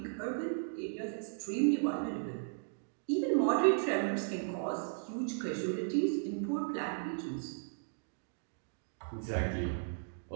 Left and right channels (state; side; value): silent; left; digital silence